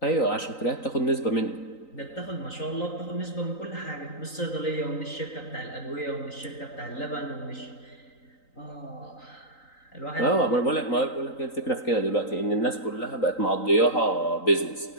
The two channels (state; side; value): late; right; 3.9 ms